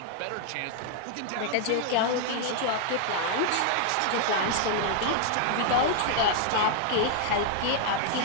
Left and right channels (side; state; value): both; different; correlation -0.01